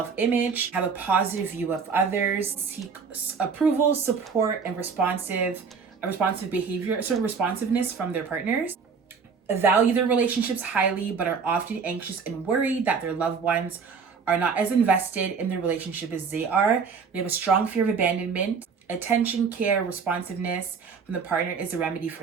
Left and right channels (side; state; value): left; quieter; 5.6 dB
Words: have a positive view of others, seek approval, support, and responsive behavior, sort of responsiveness from their partners, value their relationships highly, but are often anxious and worried that their loved ones are not as invested in their relationship as they are. They have a strong fear of abandonment. Attention, care, responsiveness from the partner is a remedy